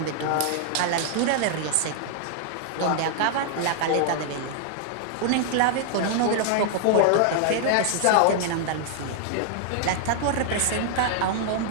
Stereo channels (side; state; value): both; different; correlation 0.00